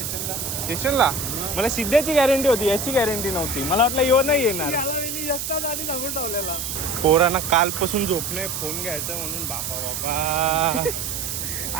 स्टेशनला मला सिद्ध्याची गॅरंटी होती, याची गॅरंटी नव्हती. मला वाटलं येऊ नाही येणार. पोरांना कालपासून झोप नाही, फोन घ्यायचा म्हणून. बापा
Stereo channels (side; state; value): right; noise; hiss, 4 dB below the sound